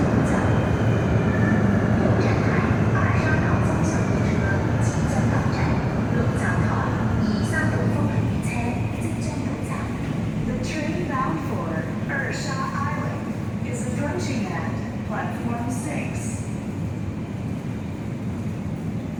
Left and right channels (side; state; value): both; identical; correlation 1.00